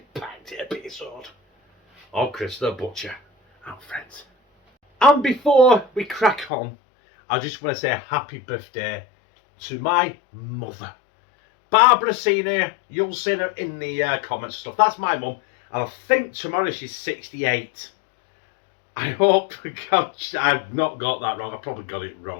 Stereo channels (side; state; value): right; drops out; at 6.5 s